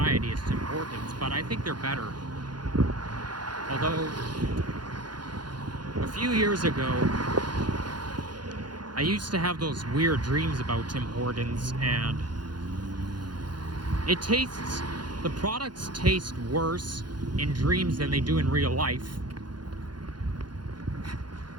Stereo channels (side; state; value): left; late; 0.71 ms